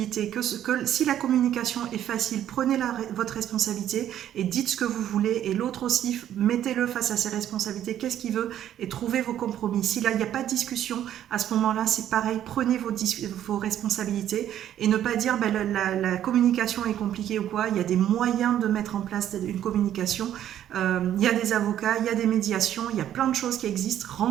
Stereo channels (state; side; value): quieter; left; 11.0 dB